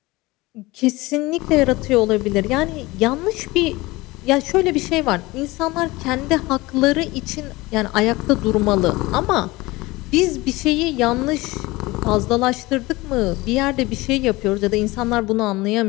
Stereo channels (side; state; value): right; quieter; 21.2 dB